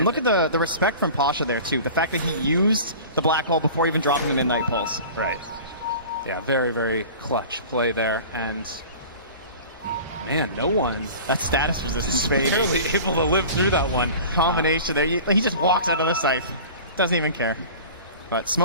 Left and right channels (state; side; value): inverted; both; correlation -0.39